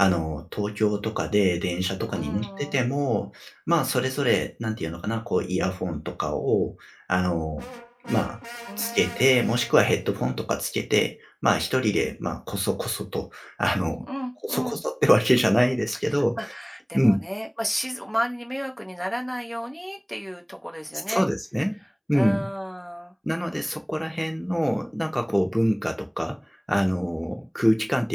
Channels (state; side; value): identical; both; correlation 1.00